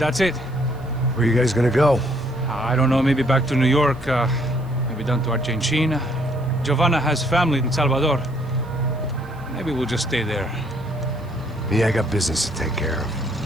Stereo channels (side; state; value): right; noise; hiss, 30 dB below the sound